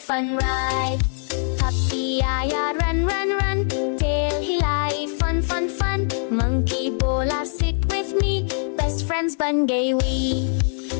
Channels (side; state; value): right; silent; 58 dB below the other